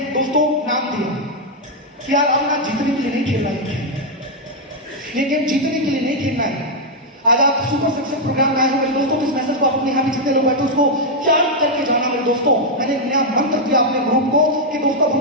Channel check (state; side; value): normal; both; correlation -0.02